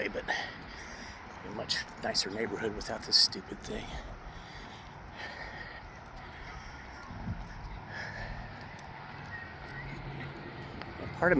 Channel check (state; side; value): identical; both; correlation 1.00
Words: but a much nicer neighborhood without this stupid thing. Part of